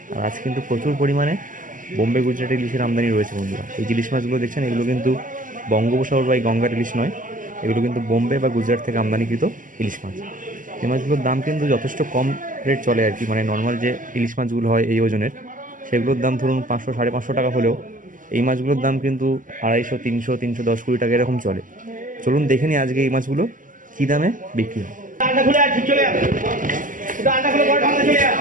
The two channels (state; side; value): late; left; 0.38 ms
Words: আর আজকে কিন্তু প্রচুর পরিমাণে বোম্বে গুজরাটি ইলিশের আমদানি রয়েছে বন্ধুরা। এই যে ইলিশ মাছগুলো দেখছেন, এগুলো কিন্তু বঙ্গোপসাগর বা এই গঙ্গার ইলিশ নয়, এগুলো কিন্তু বোম্বে বা গুজরাট থেকে আমদানিকৃত ইলিশ মাছ। এই মাছগুলোর দাম কিন্তু যথেষ্ট কম রেট চলে আর কি, মানে নর্মাল যে ইলিশ মাছগুলো হয় এই ওজনের, সেগুলোর দাম ধরুন 500 550 টাকা হলেও এই মাছগুলোর দাম কিন্তু 250, 300, 310, 20 টাকা এরকম চলে। চলুন দেখে নিই আজকে এই মাছগুলো কী দামে বিক্রি হয়।